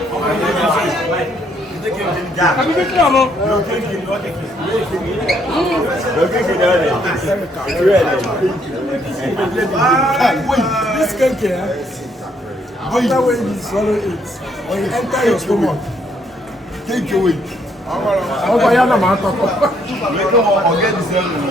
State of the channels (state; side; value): normal; both; correlation 0.70